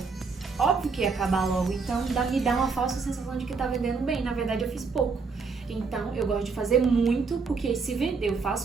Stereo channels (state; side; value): quieter; left; 4.8 dB